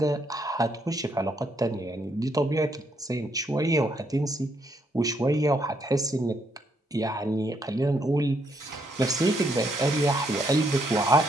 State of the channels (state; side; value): normal; both; correlation 0.74